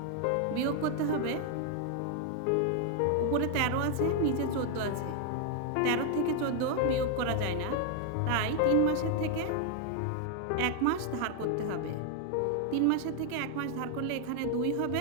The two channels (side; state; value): both; different; correlation 0.00